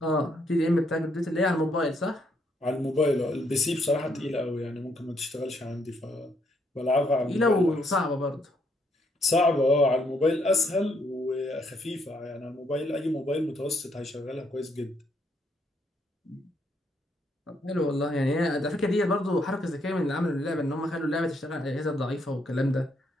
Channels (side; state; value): both; normal; correlation 0.73